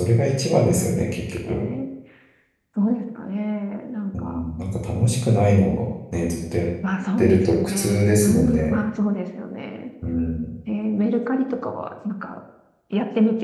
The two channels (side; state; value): both; identical; correlation 1.00